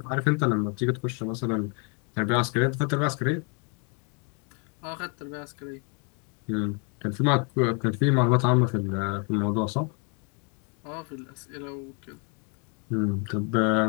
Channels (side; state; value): right; quieter; 37.1 dB